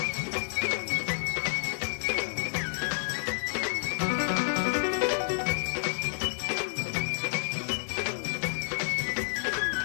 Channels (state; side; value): silent; right; 58 dB below the other